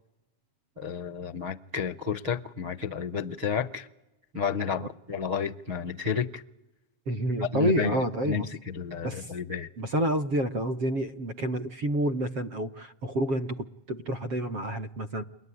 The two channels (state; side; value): late; left; 7.4 ms